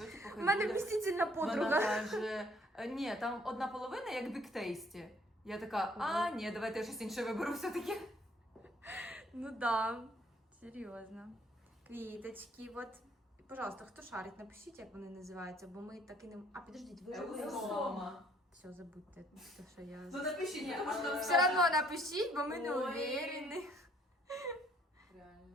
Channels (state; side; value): normal; both; correlation 0.62